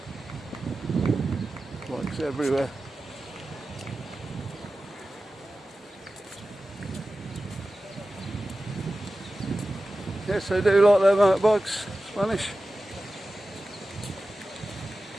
Bikes everywhere. Yes, they do like their motorbikes, Spanish.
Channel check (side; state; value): both; normal; correlation 0.94